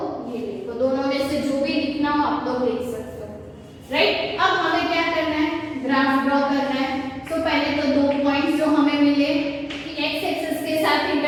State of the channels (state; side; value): identical; both; correlation 1.00